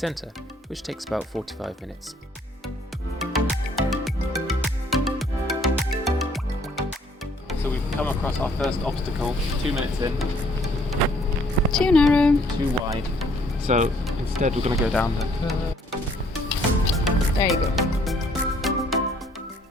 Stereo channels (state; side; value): normal; both; correlation 0.62